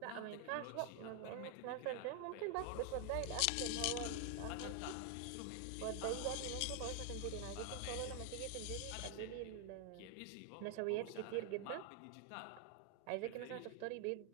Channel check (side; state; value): both; different; correlation 0.00